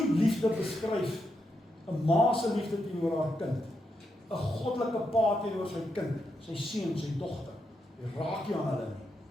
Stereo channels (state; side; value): normal; both; correlation 0.83